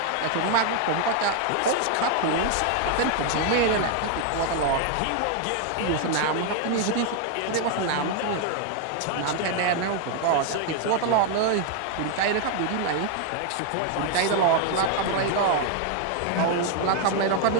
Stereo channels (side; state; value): both; different; correlation 0.00